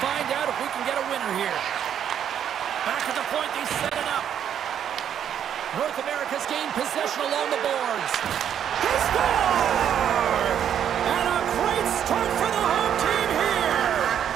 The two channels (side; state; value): left; quieter; 9.2 dB